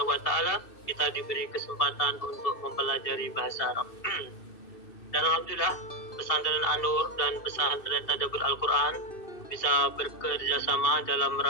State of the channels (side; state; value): right; late; 2.6 ms